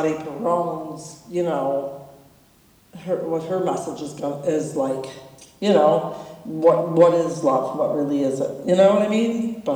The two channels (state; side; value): identical; both; correlation 1.00